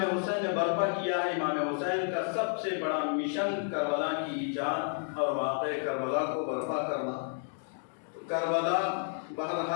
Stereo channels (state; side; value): silent; right; 57 dB below the other